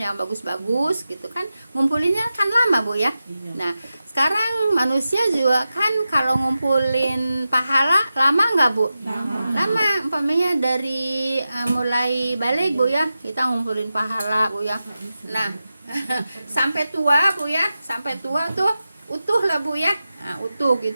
yang bagus-bagus gitu kan. Ngumpulinnya kan lama Bu ya. Nah, sekarang manusia juga kan kalau ngumpulin pahala lama nggak Bu? Lama, umpamanya dari mulai balik Bu ya, kita ngumpulin pahala Bu ya. Nah, sampai tua Bu ya, sampai tua tuh utuh lah Bu ya. Nah, utuh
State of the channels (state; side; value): inverted; both; correlation -0.92